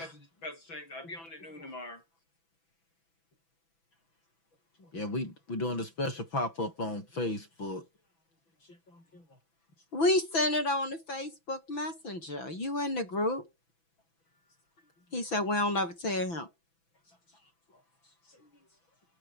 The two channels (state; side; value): late; right; 6.0 ms